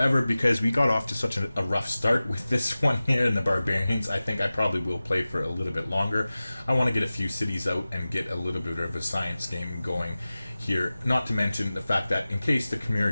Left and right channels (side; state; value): both; inverted; correlation -0.97